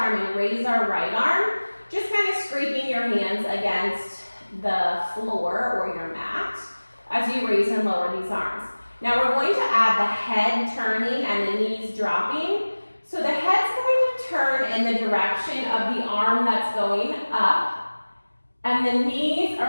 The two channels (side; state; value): both; inverted; correlation -1.00